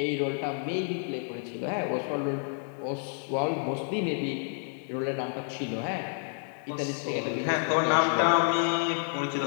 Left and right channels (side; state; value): right; silent; 58 dB below the other